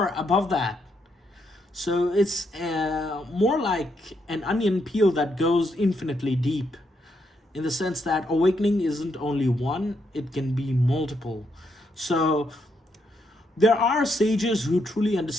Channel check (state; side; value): normal; both; correlation 0.78